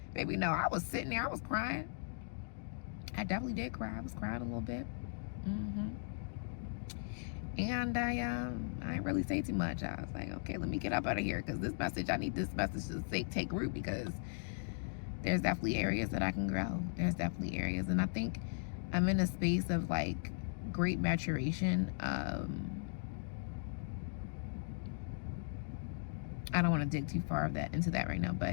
Baby, no, I was sitting there, I was crying. I definitely did cry. I was crying a little bit. And I didn't really say too much. I was like, okay, let me get up out of here, because I need this message to take root, because there's definitely areas that I can grow. There's definitely areas. And I think I'm in a space of like great maturation. I don't want to dig too far into that right now,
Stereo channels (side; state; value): right; silent; digital silence